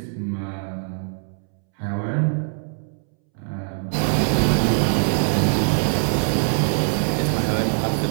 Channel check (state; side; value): silent; left; 64 dB below the other